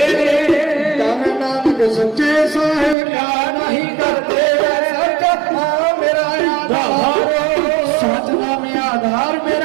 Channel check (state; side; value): drops out; left; at 3.0 s